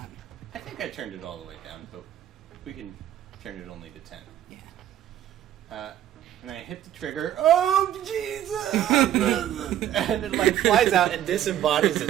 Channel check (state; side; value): quieter; left; 11.8 dB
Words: I think I turned it all the way down, but we can turn it only to 10. Yeah. And I hit the trigger. Oh, Jesus! And it flies out and disembodies